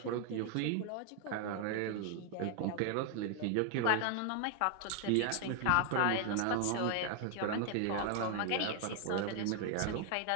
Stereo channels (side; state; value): both; different; correlation 0.00